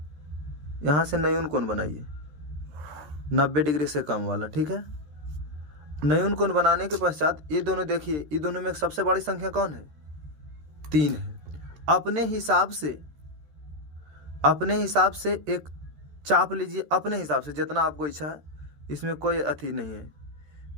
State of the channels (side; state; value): left; late; 13 ms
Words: से नयून कोण बनाइए, 90 डिग्री से कम वाला। ठीक है, नयून कोण बनाने के पश्चात ये दोनों देखिए, ये दोनों में सबसे बड़ी संख्या कौन है, 3 है। अपने हिसाब से एक चाप लीजिए, अपने हिसाब से जितना आपको इच्छा है, इसमें कोई अथी नहीं है।